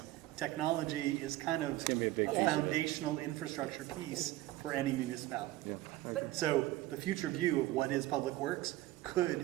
technology is kind of gonna be a big a piece of it. foundational infrastructure piece for any municipality. Yeah, So the future view of what is public works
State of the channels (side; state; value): left; quieter; 16.5 dB